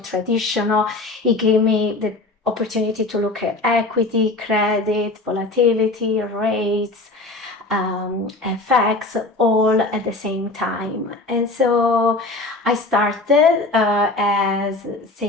It gave me the opportunity to look at equity, credit, volatility, rates, FX, all at the same time. And so I started as,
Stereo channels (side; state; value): right; quieter; 3.1 dB